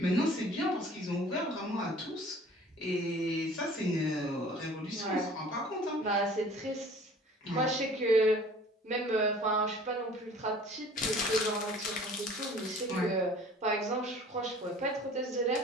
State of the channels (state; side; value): normal; both; correlation 0.48